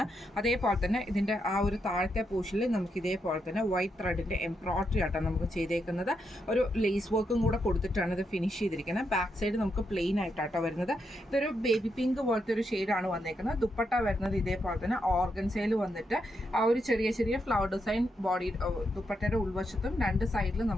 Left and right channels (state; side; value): normal; both; correlation 0.82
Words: അതേപോലെ തന്നെ ഇതിൻ്റെ ആ ഒരു താഴത്തെ പോർഷനിൽ നമുക്ക് ഇതേപോലെ തന്നെ വൈറ്റ് ത്രെഡിൻ്റെ എംബ്രോയിഡറി ആട്ടോ നമുക്ക് ചെയ്തേക്കുന്നത്. ഒരു ലേസ് വർക്കും കൂടെ കൊടുത്തിട്ടാണ് ഇത് ഫിനിഷ് ചെയ്തിരിക്കുന്നത്. ബാക്ക് സൈഡ് നമുക്ക് പ്ലെയിൻ ആയിട്ടാട്ടോ വരുന്നത്. ഇതൊരു ബേബി പിങ്ക് പോലത്തെ ഒരു ഷെയ്ഡാണ് വന്നേക്കുന്നത്. ദുപ്പട്ട വരുന്നത് ഇതേപോലെ തന്നെ ഓർഗൻസയിൽ വന്നിട്ട് ആ ഒരു ചെറിയ ഫ്ലവർ ഡിസൈൻ ബോഡി ദുപ്പട്ടയുടെ ഉൾവശത്തും രണ്ട് സൈഡിലും